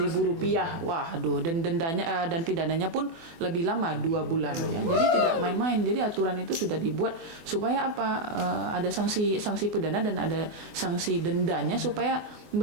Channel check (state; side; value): late; left; 24 ms